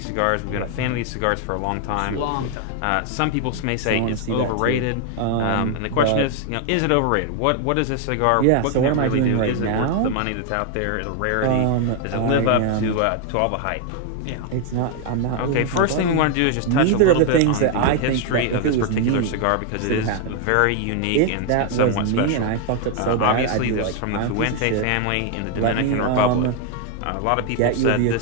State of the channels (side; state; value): both; different; correlation 0.01